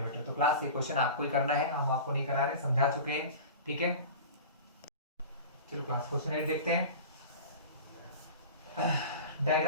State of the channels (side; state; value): both; inverted; correlation -0.34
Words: तो क्लास ये क्वेश्चन आपको ही करना है, हम आपको नहीं करा रहे, समझा चुके हैं। ठीक है, चलो क्लास क्वेश्चन 8 देखते हैं।